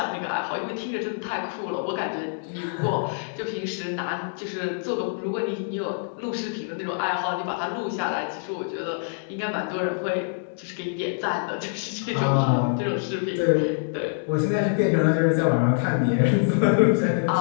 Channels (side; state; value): right; silent; digital silence